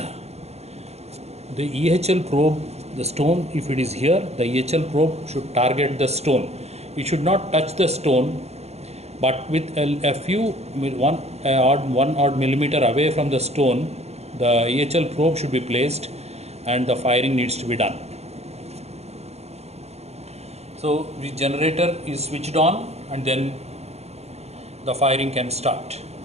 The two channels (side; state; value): left; late; 0.31 ms